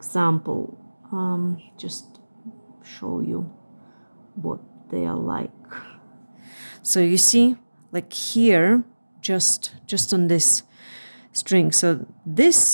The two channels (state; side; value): inverted; both; correlation -1.00